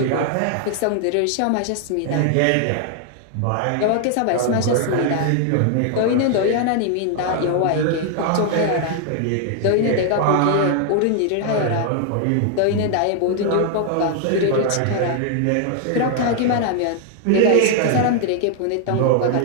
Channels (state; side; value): different; both; correlation 0.00